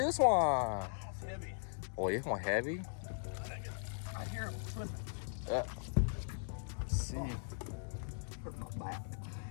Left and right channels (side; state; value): right; silent; digital silence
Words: one? It's heavy. Oh, this one heavy. I hear him slipping. Let's see. Hurt my back.